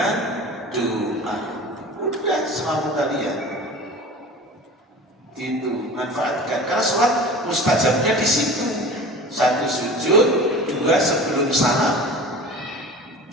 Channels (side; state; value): both; normal; correlation 0.38